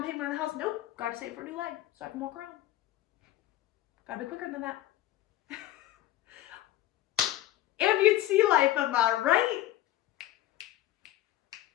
payment on the house. Nope, gotta save for a new leg so I can walk around. Gotta be quicker than that. Amputee life, am I right?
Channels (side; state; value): right; quieter; 14.6 dB